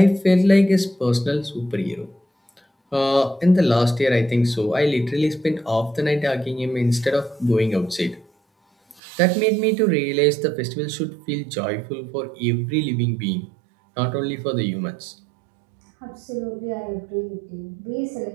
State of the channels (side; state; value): left; drops out; at 9.0 s